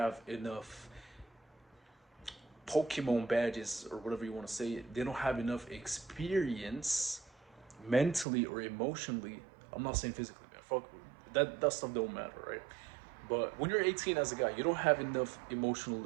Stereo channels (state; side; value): drops out; left; at 8.2 s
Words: enough Pokemon badges or whatever you want to say. They don't have enough experience mentally or emotionally. I'm not saying physically, man. Fuck that stuff don't matter, right? But when you're 18 as a guy, you don't have enough